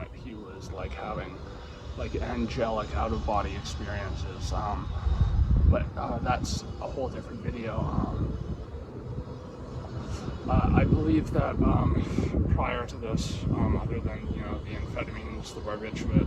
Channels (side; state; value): both; identical; correlation 1.00